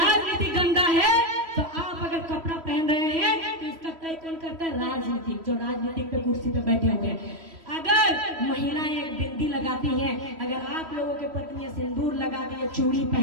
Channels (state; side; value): late; left; 3.1 ms